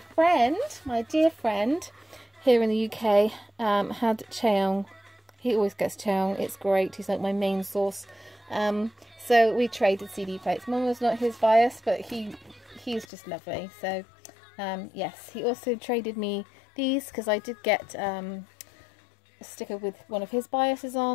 my dear friend here in the UK, had Chaeyoung. He always gets Chaeyoung. It's great. He's like my main source. So we traded CD plates. Momo's not his bias, but he's just lovely. So yes, he also traded me these, because I did get a sticker with one of his biases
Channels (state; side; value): drops out; right; at 13.1 s